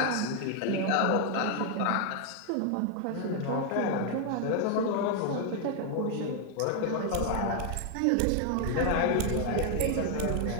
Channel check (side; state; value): both; different; correlation 0.00